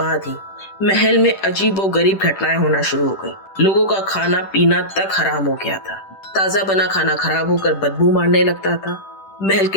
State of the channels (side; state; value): right; late; 10 ms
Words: ही महल में अजीबोगरीब घटनाएं होना शुरू हो गई। लोगों का खाना पीना तक हराम हो गया था। ताजा बना खाना खराब होकर बदबू मारने लगता था। महल